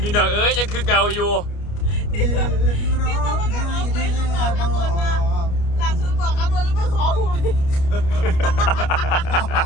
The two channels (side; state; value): right; late; 29 ms